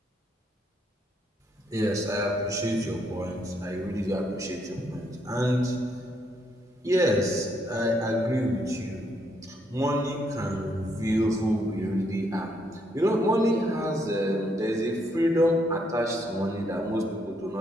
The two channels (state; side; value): normal; both; correlation 0.74